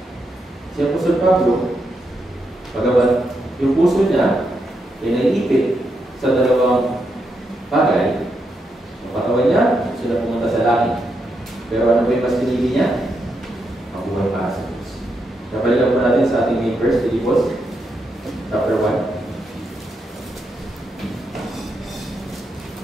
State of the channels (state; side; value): normal; both; correlation 0.82